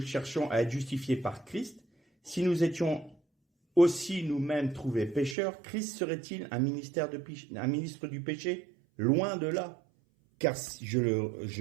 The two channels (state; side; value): drops out; left; at 5.4 s